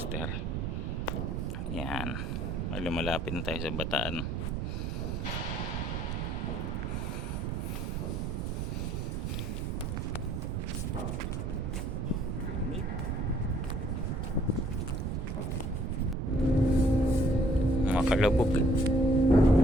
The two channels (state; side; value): noise; right; rumble, 2 dB below the sound